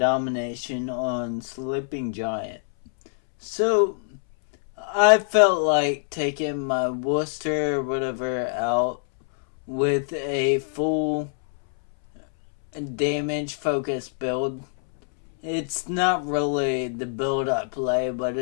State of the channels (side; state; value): right; silent; 62 dB below the other